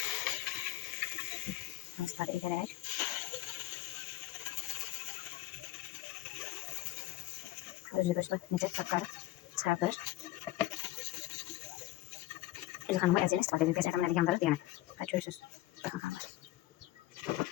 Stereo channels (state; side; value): quieter; right; 16.1 dB